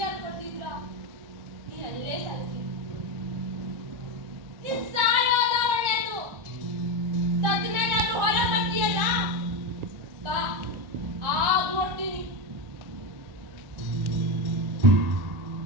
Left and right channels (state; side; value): late; left; 1.4 ms